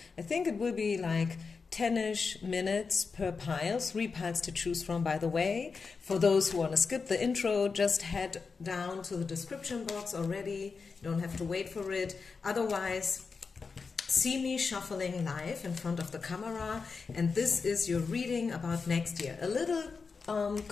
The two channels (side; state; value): right; quieter; 4.9 dB